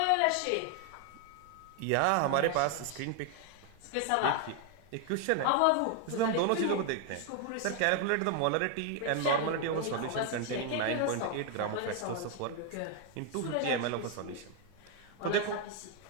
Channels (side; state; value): both; different; correlation 0.01